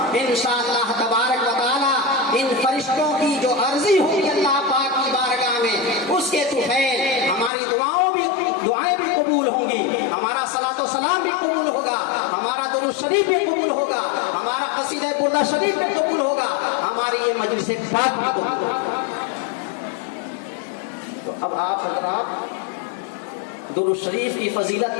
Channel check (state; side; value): drops out; right; at 7.5 s